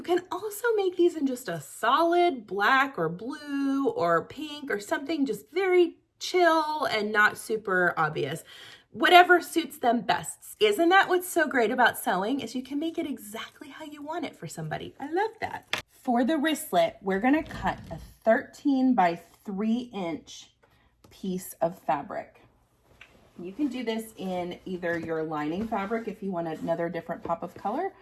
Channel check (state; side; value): identical; both; correlation 1.00